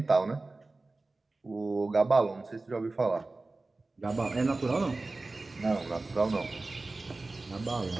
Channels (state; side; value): quieter; left; 3.3 dB